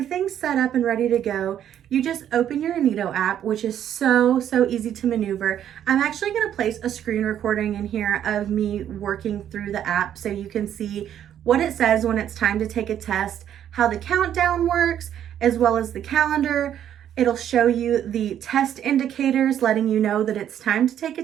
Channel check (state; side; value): quieter; left; 10.2 dB